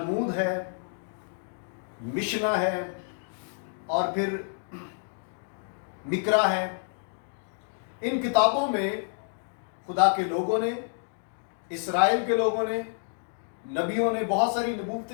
ہے، مشنا ہے، اور پھر مکرا ہے، ان کتابوں میں خدا کے لوگوں نے، اسرائیل کے لوگوں نے، نبیوں نے بہت ساری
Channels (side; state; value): right; silent; digital silence